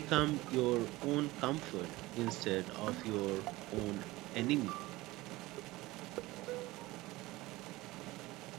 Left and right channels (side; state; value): left; quieter; 19.6 dB